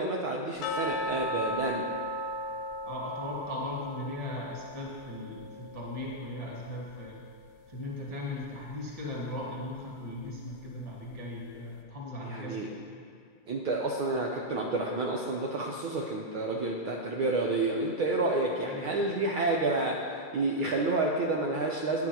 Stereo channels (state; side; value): late; right; 2.3 ms